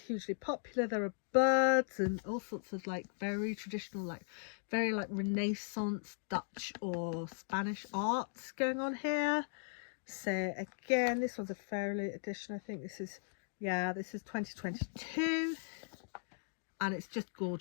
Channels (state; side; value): silent; right; digital silence